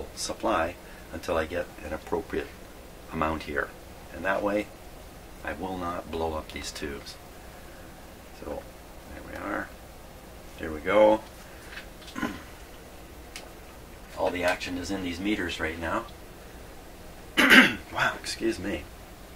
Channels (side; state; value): both; identical; correlation 1.00